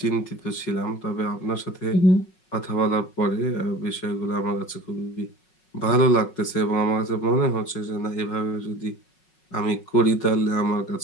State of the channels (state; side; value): late; right; 5.4 ms